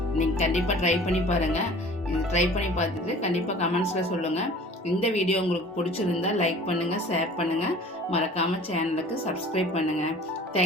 நீங்கள் கண்டிப்பாக ட்ரை பண்ணி பாருங்கள். இது ட்ரை பண்ணி பார்த்துட்டு கண்டிப்பாக கமெண்ட்ஸில் சொல்லுங்கள். இந்த வீடியோ உங்களுக்கு பிடிச்சிருந்தா லைக் பண்ணுங்கள், ஷேர் பண்ணுங்கள், மறக்காமல் சேனலுக்கு சப்ஸ்கிரைப் பண்ணுங்கள்.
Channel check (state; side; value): normal; both; correlation 0.46